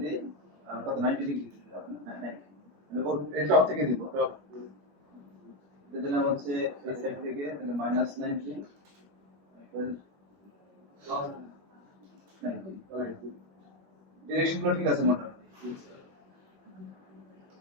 দিই আর কত 90 ডিগ্রি মানে ও এই টপ থেকে দিব দিলাম হচ্ছে এই সাইড থেকে তাহলে -90 ডিরেকশনগুলো ঠিক আছে মোটামুটি হচ্ছে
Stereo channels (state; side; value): late; left; 21 ms